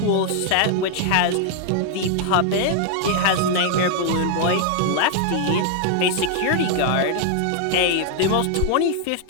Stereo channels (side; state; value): both; different; correlation 0.00